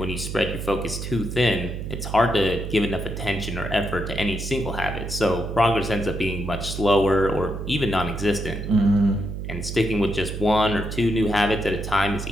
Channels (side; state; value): right; noise; hum, 6 dB below the sound